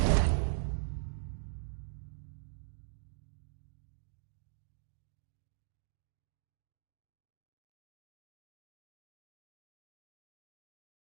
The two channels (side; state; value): left; silent; digital silence